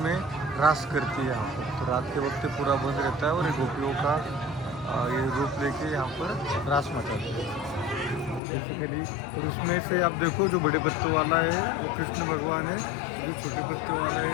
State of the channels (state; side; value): drops out; right; at 8.4 s